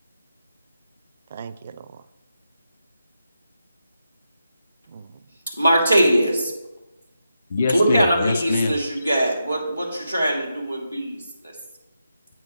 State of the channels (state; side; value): inverted; both; correlation -0.86